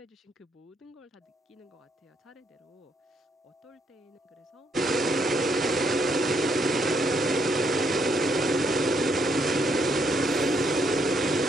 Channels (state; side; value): normal; both; correlation 0.73